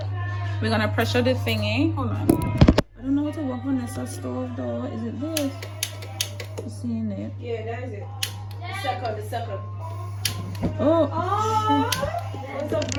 We're gonna pressure the thingy. Hold on. I don't know how to work on this stove though. Is it this? You seeing it? Yeah, that is it. The second. Oh. It's a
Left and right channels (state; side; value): identical; both; correlation 1.00